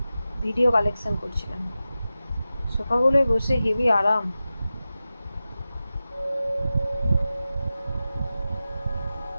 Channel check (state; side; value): inverted; both; correlation -0.94